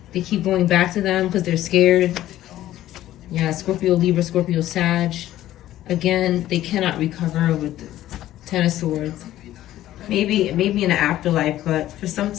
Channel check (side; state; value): right; quieter; 13.8 dB